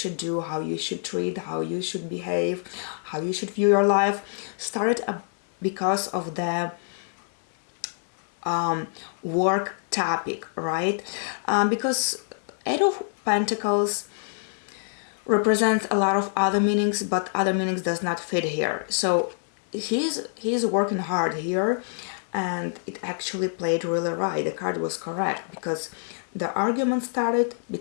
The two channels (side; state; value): right; silent; 61 dB below the other